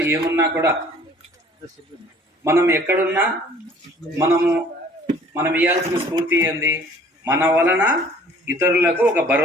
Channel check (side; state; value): both; normal; correlation 0.53